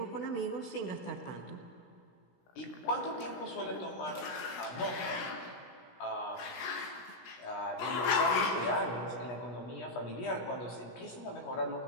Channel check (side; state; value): right; late; 17 ms